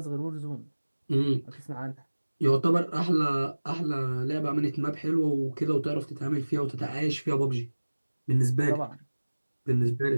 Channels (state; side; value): inverted; both; correlation -1.00